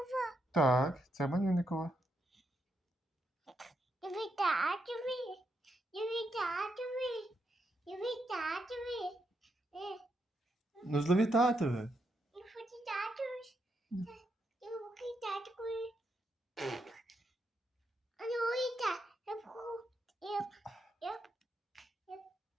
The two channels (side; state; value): both; normal; correlation 0.81